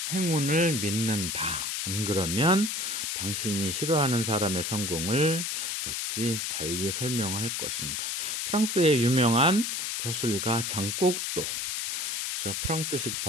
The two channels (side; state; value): left; noise; hiss, 2 dB below the sound